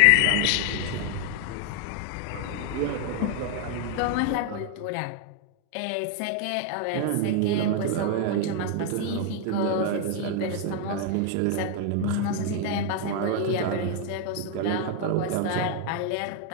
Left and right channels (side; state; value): both; different; correlation 0.01